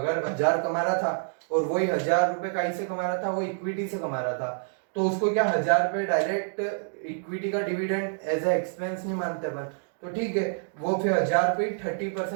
1000 कमा रहा था और वही 1000 रुपए कहीं से कमा रहा था, वो इक्विटी से कमा रहा था, तो उसको क्या 1000 रुपए डायरेक्ट इक्विटी का डिविडेंड एज ए एक्सपेंस नहीं मानते अपन, तो ठीक है, वो फिर 1000 रुपए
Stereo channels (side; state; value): left; silent; digital silence